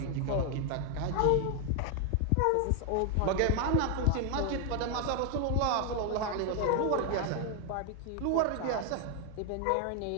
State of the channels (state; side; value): different; both; correlation 0.00